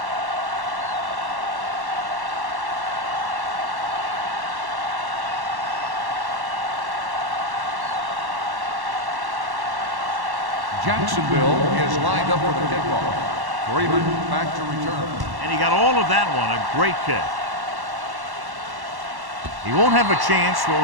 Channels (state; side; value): late; left; 1.1 ms